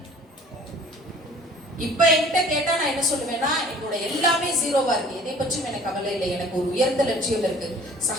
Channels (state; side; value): normal; both; correlation 0.50